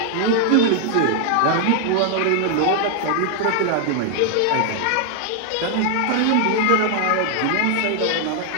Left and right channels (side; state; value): both; different; correlation 0.00